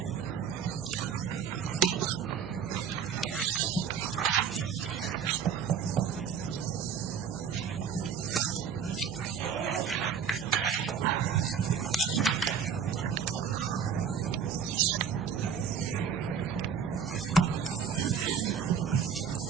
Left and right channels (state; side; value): quieter; left; 6.9 dB